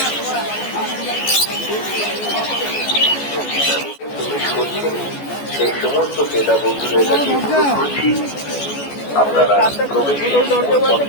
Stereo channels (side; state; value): right; late; 14 ms